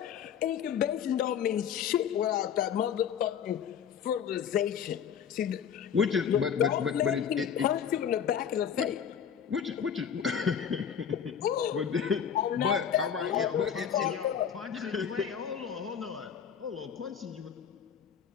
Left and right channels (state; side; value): quieter; right; 8.0 dB